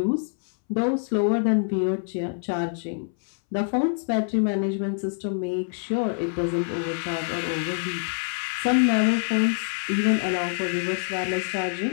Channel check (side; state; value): right; silent; 61 dB below the other